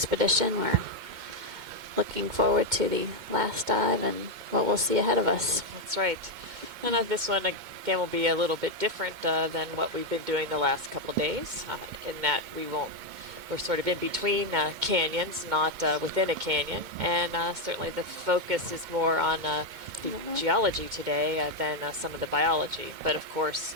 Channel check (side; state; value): left; late; 2.1 ms